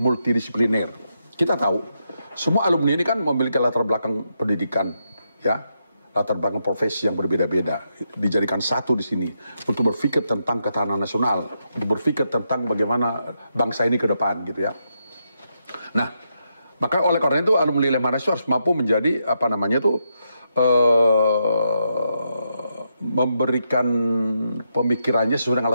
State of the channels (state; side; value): inverted; both; correlation -0.82